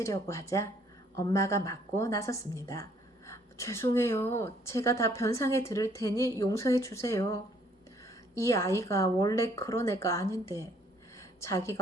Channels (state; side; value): normal; both; correlation 0.63